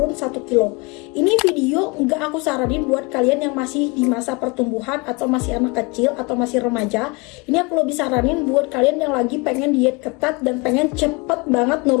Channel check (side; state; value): right; quieter; 27.7 dB